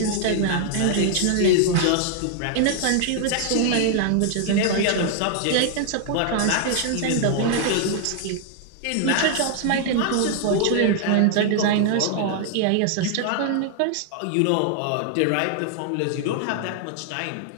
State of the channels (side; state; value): both; different; correlation 0.00